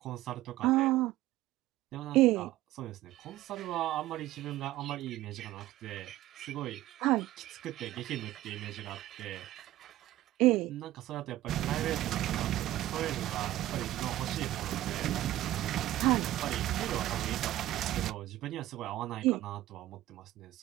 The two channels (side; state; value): left; quieter; 14.9 dB